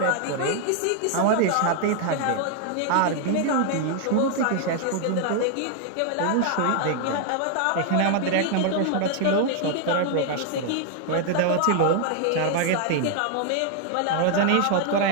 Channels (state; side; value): different; both; correlation 0.00